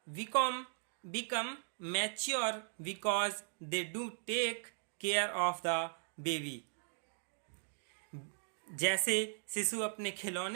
become mature because they do take care of the baby। जैसे शिशु अपने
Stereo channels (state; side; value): silent; left; digital silence